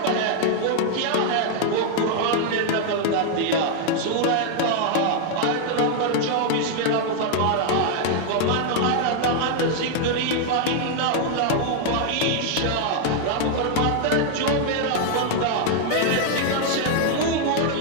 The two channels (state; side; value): different; both; correlation 0.00